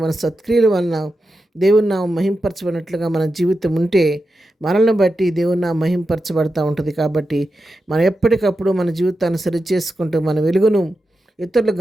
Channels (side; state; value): both; normal; correlation 0.90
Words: మన సత్క్రియల వలన దేవుని నామం మహింపరచబడినట్లుగా మన జీవితం ఉంటే మనల్ని బట్టి దేవుని నామం మహింపరచబడతా ఉంటుంది. కాబట్టి మనం ఎప్పటికప్పుడు మన జీవితాన్ని సరిచేసుకుంటూ మన వెలుగును ఇతరులు